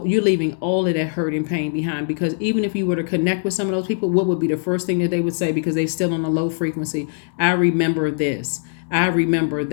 you're leaving all of that hurt and pain behind, because even if you were to connect with some of those people, what would be the first thing that they would say, because they're still on a low frequency? I remember this. I remember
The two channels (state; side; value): silent; right; 65 dB below the other